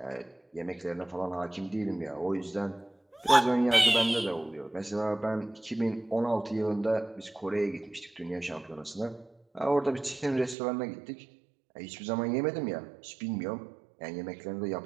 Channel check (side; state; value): left; drops out; at 10.6 s